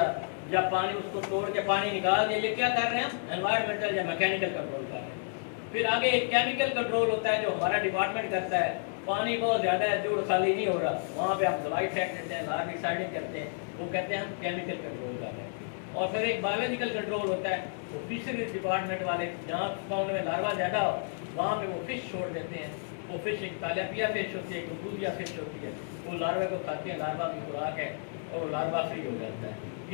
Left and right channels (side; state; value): right; silent; digital silence